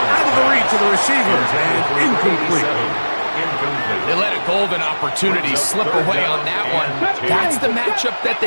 out of the reach of the receiver and incomplete. They let a golden opportunity slip away on that one. That's the matchup that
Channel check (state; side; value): inverted; both; correlation -1.00